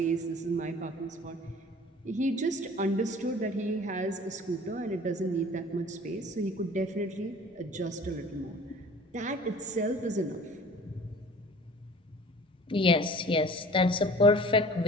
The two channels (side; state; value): both; normal; correlation 0.46